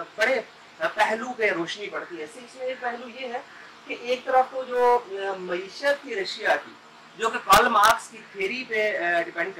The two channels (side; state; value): both; identical; correlation 1.00